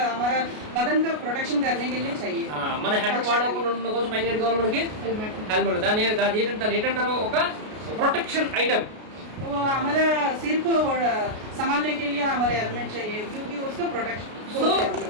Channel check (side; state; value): left; late; 33 ms